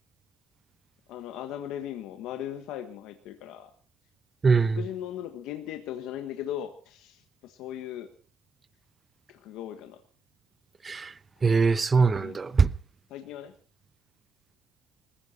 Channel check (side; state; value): left; quieter; 3.2 dB